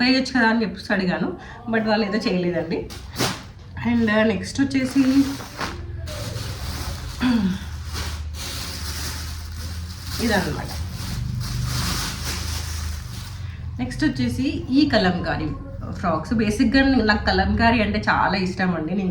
వేయచ్చు కదా అని చెప్పేసి అడిగాను. బట్ వాళ్ళు ఏదో చేయలేదండి. అండ్ నెక్స్ట్ వచ్చేసి ఇదన్నమాట. నెక్స్ట్ వచ్చేసి ఈ కలంకారీ ఫ్రాక్స్. బేసిక్గా నాకు కలంకారీ అంటే చాలా ఇష్టం అండి. నేను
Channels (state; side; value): identical; both; correlation 1.00